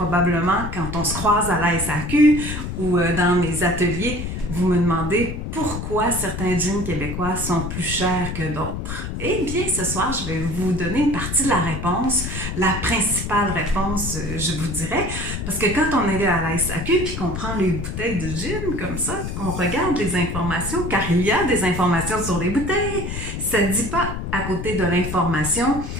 quand on se croise à la SAQ ou dans mes ateliers, vous me demandez pourquoi certains jeans québécois sont plus chers que d'autres. Eh bien, ce soir, je vais vous donner une partie de la réponse, la principale réponse, je vous dirais, parce que quand on est à la SAQ puis qu'on prend les bouteilles de gin comme ça, qu'on regarde les informations, car il y a des informations sur les bouteilles, ça ne dit pas à côté de l'information,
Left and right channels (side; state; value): left; noise; rumble, 5 dB below the sound